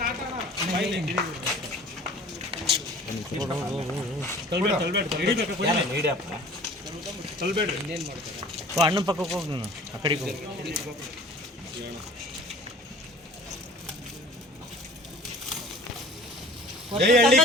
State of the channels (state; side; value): normal; both; correlation 0.47